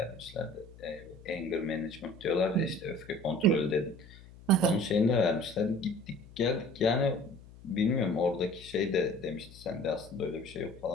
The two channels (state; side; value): noise; left; hum, 20 dB below the sound